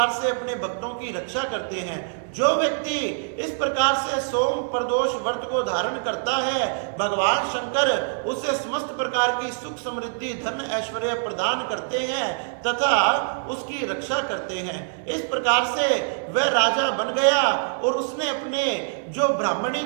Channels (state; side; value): silent; left; digital silence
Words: से अपने भक्तों की रक्षा करते हैं। जो व्यक्ति इस प्रकार से सोम प्रदोष व्रत को धारण करता है, भगवान शंकर उसे समस्त प्रकार की सुख समृद्धि धन ऐश्वर्य प्रदान करते हैं तथा उसकी रक्षा करते हैं। इस प्रकार से वह राजा बन गया और उसने अपने जो ब्राह्मणी